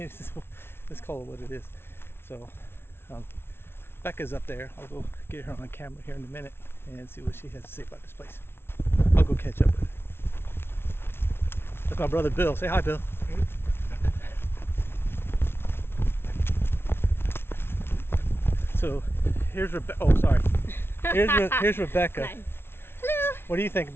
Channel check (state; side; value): late; right; 0.12 ms